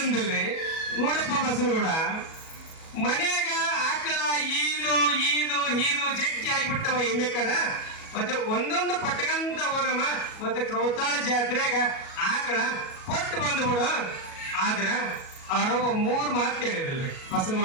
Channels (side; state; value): right; late; 37 ms